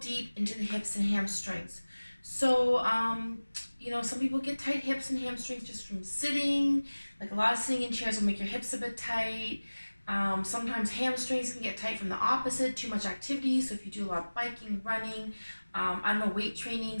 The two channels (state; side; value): inverted; both; correlation -1.00